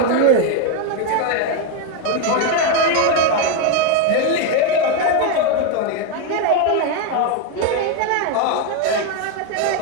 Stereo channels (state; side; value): different; both; correlation 0.02